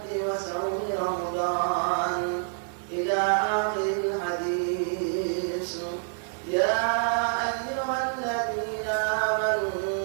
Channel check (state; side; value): silent; left; digital silence